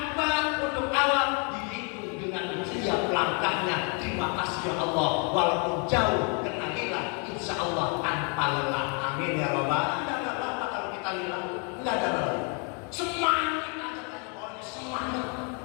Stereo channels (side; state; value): right; quieter; 36.6 dB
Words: untuk awal dihitung dengan siap langkahnya. Terima kasih ya Allah, walaupun jauh kena lillah, insyaallah tanpa lelah. Amin ya Rabbal. Enggak apa-apa kalau kita lillah, enggak ada lelah. Semangat aja pokoknya semangat.